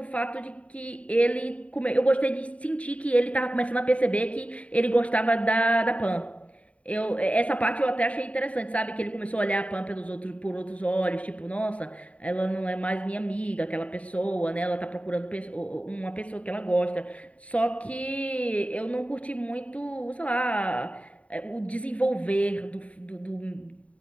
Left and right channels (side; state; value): right; late; 0.066 ms